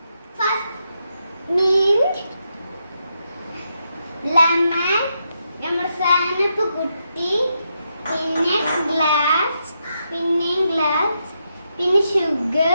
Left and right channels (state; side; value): inverted; both; correlation -0.82